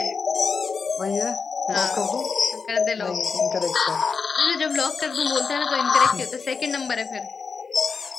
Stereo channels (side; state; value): right; quieter; 5.1 dB